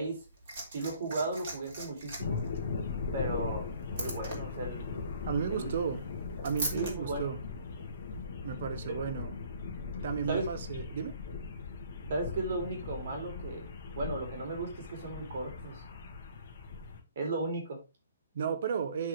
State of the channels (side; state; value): both; inverted; correlation -0.57